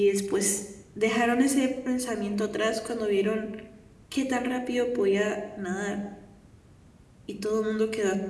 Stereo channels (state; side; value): identical; both; correlation 1.00